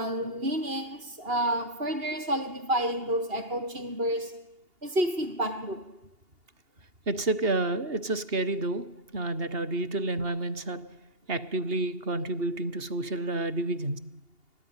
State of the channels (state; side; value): late; left; 2.8 ms